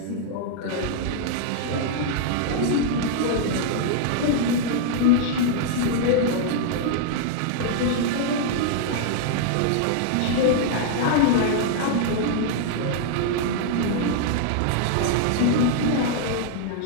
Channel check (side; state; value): both; different; correlation -0.01